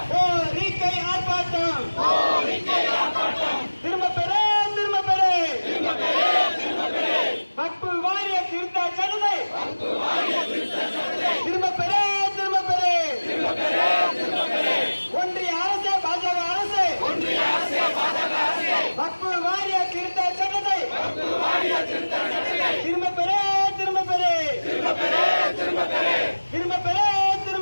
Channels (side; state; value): both; inverted; correlation -1.00